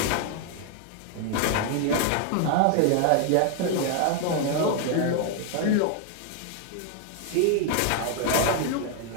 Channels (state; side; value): different; both; correlation 0.00